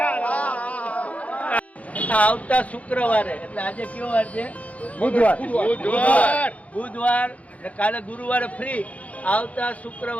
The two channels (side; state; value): right; late; 0.067 ms